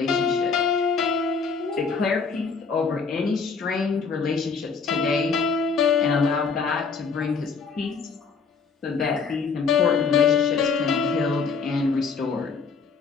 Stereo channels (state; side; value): quieter; right; 5.2 dB